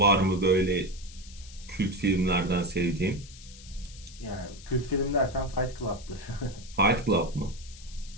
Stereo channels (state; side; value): noise; left; hiss, 19 dB below the sound